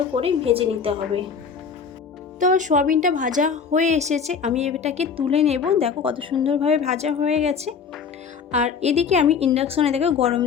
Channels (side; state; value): right; quieter; 6.2 dB